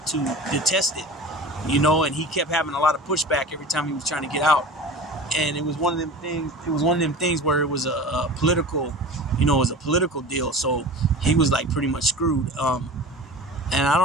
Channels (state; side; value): normal; both; correlation 0.36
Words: to detest it, you know. And he kept having a lot of pushback every time he was trying to get out. And it was one of them things where it was a political, you know, it was a political deal. So he was like pretty much screwed. And I